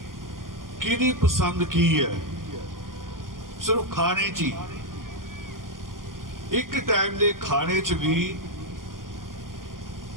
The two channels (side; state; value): left; late; 0.91 ms